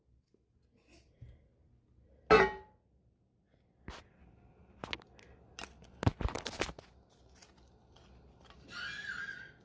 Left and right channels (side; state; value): both; identical; correlation 1.00